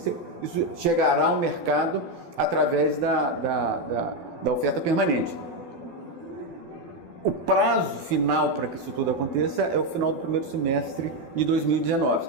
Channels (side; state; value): left; late; 12 ms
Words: isso chegará ao mercado através da oferta permanente. O prazo final para que isso tudo aconteça é o final do primeiro semestre de 2019.